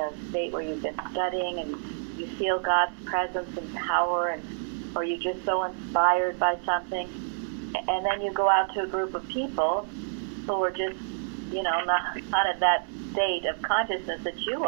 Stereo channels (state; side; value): silent; left; 59 dB below the other